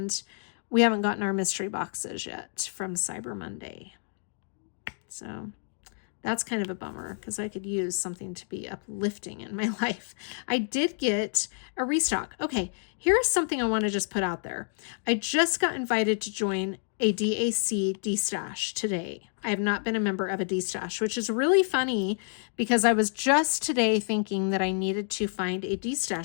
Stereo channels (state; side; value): silent; right; 59 dB below the other